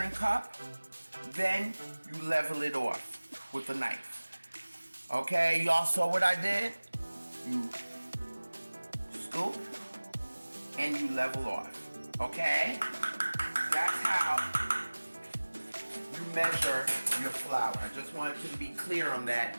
cup, then you level it off with a knife. Okay, y'all saw what I did? You scoop and you level off. Okay? That's how you measure your flour. I just wanted to be clear on that.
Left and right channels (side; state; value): both; inverted; correlation -1.00